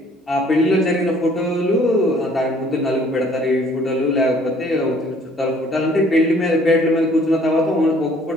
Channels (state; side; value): normal; both; correlation 0.58